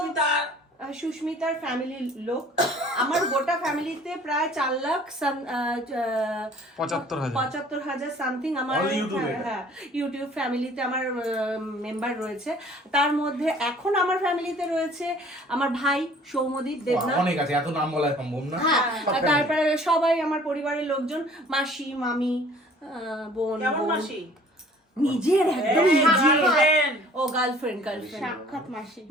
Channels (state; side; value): normal; both; correlation 0.52